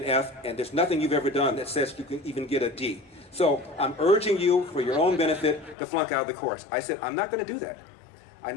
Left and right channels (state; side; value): drops out; right; at 5.8 s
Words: an F, and there's nothing you've ever done that says you can even get a D. So I'm urging you, for your own benefit, to flunk out of the course. I said, I'm not going to do that. I